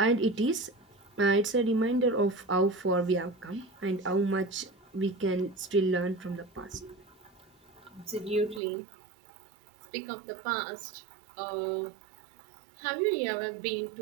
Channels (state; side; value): drops out; left; at 8.6 s